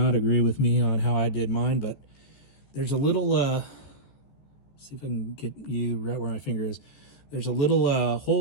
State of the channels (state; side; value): late; right; 14 ms